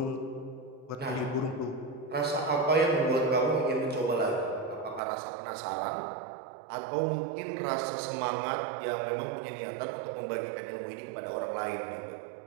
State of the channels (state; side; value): drops out; left; at 5.0 s